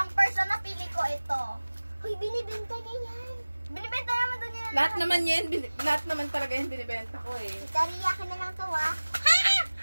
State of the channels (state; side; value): inverted; both; correlation -1.00